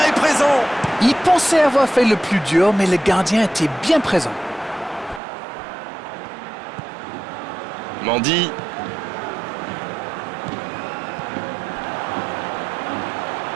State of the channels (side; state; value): left; drops out; at 5.2 s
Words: est présent! Il pensait avoir fait le plus dur, mais le gardien était bien présent. Mendy.